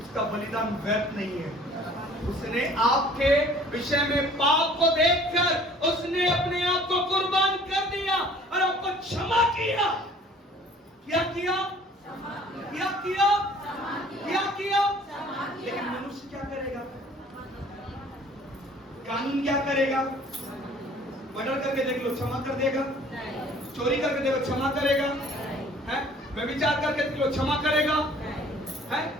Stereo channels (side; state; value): both; normal; correlation 0.52